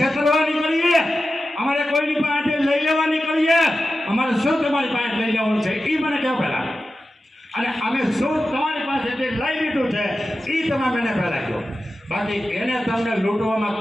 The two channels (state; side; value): normal; both; correlation 0.93